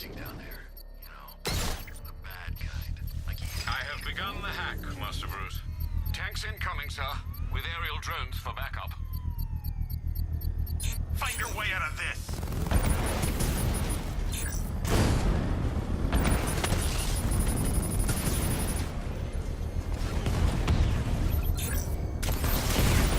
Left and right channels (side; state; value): both; identical; correlation 1.00